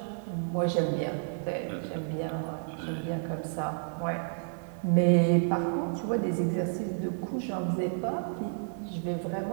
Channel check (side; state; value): left; silent; digital silence